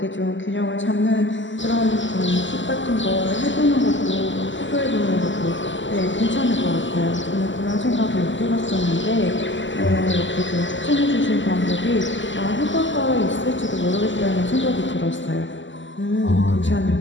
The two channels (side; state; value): right; late; 0.54 ms